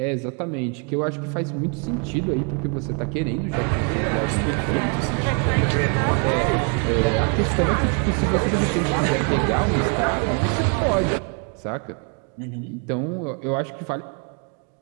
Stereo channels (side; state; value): left; quieter; 37.1 dB